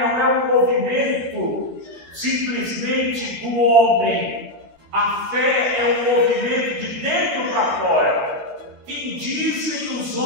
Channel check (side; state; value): left; late; 13 ms